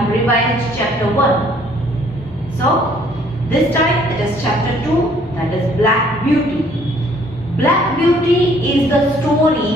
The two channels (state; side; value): normal; both; correlation 0.61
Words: revised chapter 1. So, this time it is chapter 2, that is Black Beauty. Black Beauty is the